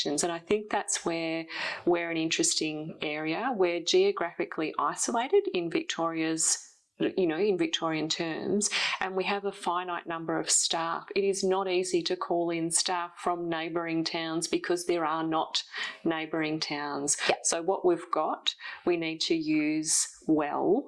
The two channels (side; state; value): both; identical; correlation 1.00